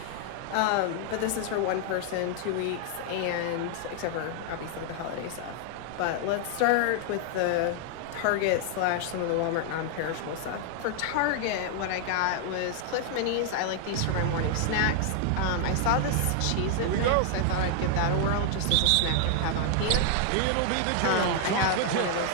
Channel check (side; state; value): both; different; correlation 0.00